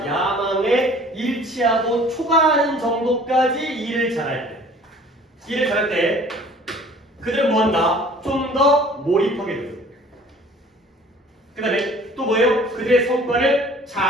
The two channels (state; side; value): normal; both; correlation 0.51